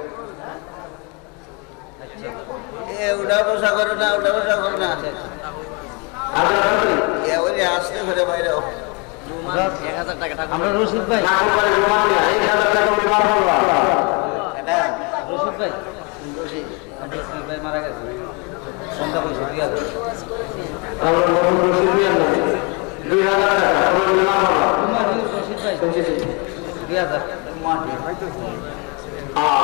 উঠা বসা করো না ওই আসতে ঘরে বাইরে 1000 টাকা আমরা রশিদ ভাই রশিদ ভাই মারা গেছে সন্ধ্যা পয়সা 2000 টাকা রশিদ ভাই 2000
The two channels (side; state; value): right; quieter; 31.5 dB